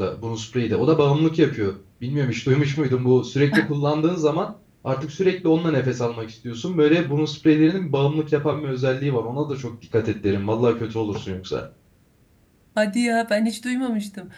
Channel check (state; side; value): identical; both; correlation 1.00